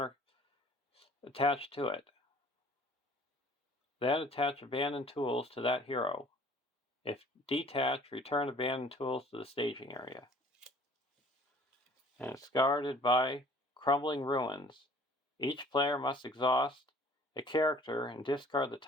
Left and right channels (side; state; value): both; normal; correlation 0.52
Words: attached to it. Then attach abandoned tools to that hero. If detached, return abandoned tools to the staging area. And it's guarded by Crumbling Ruins. Each player must exhaust a character and discard the